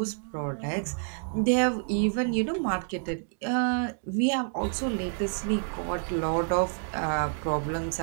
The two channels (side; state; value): left; silent; 59 dB below the other